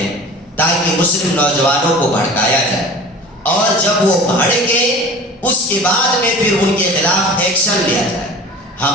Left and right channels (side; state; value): both; normal; correlation 0.40